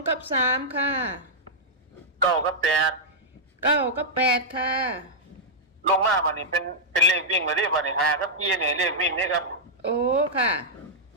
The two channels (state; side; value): normal; both; correlation -0.08